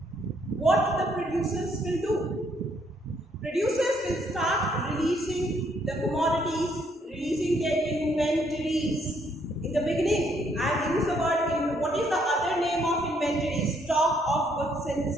what the producers will do? Producers will start releasing the commodities, releasing their inventories. In the beginning, I have used the word in what is the other name of inventory? Stock of goods and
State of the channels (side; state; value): both; normal; correlation 0.70